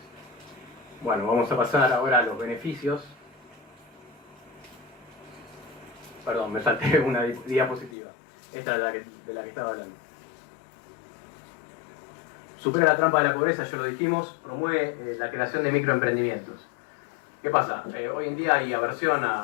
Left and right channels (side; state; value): right; drops out; at 8.0 s